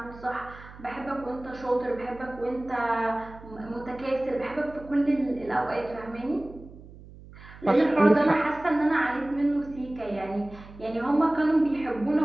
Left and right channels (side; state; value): right; noise; hum, 19 dB below the sound